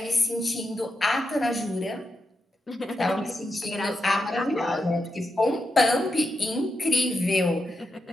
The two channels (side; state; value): both; normal; correlation 0.87